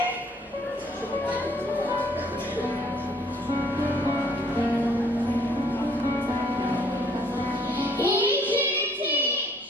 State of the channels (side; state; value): both; normal; correlation 0.62